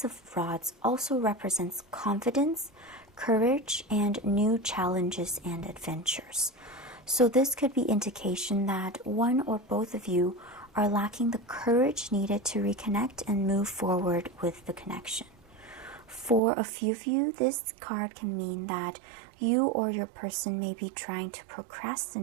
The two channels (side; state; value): left; drops out; at 16.4 s